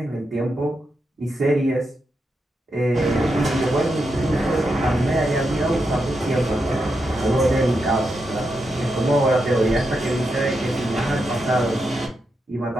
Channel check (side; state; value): both; normal; correlation 0.85